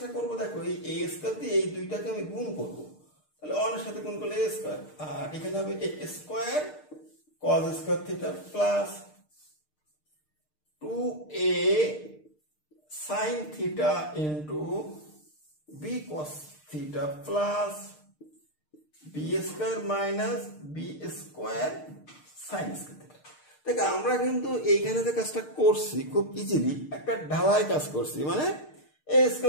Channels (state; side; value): late; right; 6.6 ms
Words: করব দেখো, এই a স্কয়ার দিয়ে এই দুইটাকে আমি গুণ করব, তাহলে 1 এর সাথে গুণ করলে a স্কয়ার, আর এখানে হবে a square cos square theta plus 2a sin theta into b cos theta plus b square minus b square sin square theta. দেখ আমরা কিন্তু এইখানে যে কাজটা করছি খুব ইজিলি একটা ঢালাই কাজ করছি, মানে a